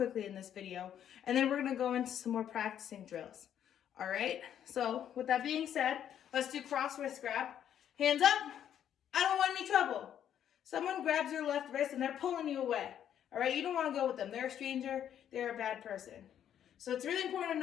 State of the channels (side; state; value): right; quieter; 9.8 dB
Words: in this video, and then we're gonna go into some more practicing drills. All right, so with that being said, let's do cross wrist grab. Hands up, I don't want any trouble. Someone grabs your left wrist and they're pulling you away. All right, you don't wanna go with them. They're a stranger, they're a bad person. So it's really important to